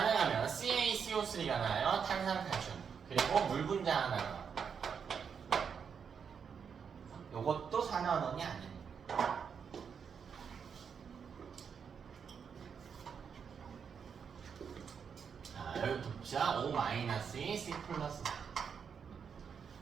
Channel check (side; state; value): left; quieter; 6.7 dB